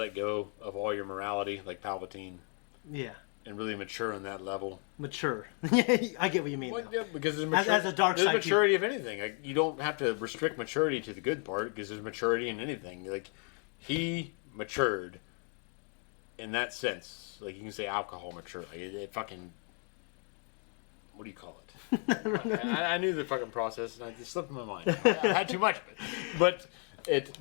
go of all your morality, like Palpatine. Yeah. And really mature on that level. Mature. I get what you mean, well, though. Yeah, because there's as a dark side maturity of anything. Like, you don't have to restrict maturity to the good part, because there's maturity in anything. Like, he matured in that sense. Like, you can say alcohol mature. Like, it fucking... What do you call it? I knew the fucking process, and it just slipped in my mind. I had too much of it. But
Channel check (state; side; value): quieter; right; 37.6 dB